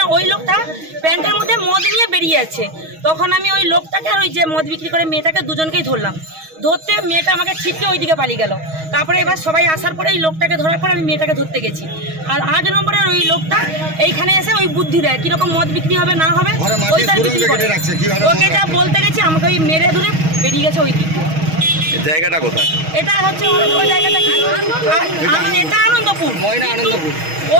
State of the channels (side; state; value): left; late; 6.3 ms